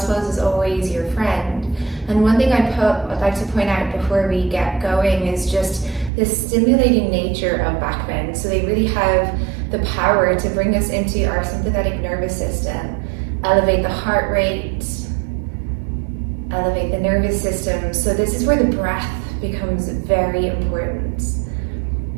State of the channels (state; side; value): drops out; left; at 6.1 s